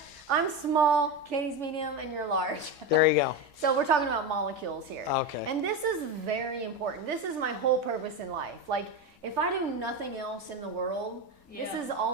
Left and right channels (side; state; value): both; normal; correlation 0.17